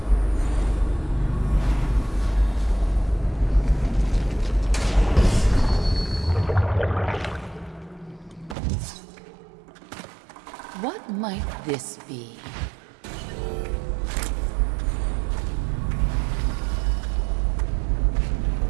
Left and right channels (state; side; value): drops out; left; at 8.6 s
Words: What might this be?